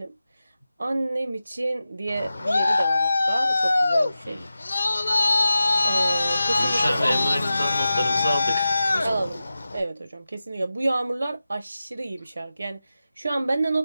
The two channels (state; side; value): inverted; both; correlation -0.93